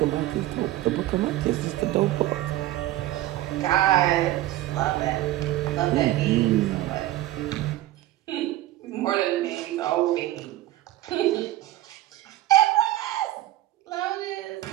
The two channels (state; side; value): quieter; left; 15.2 dB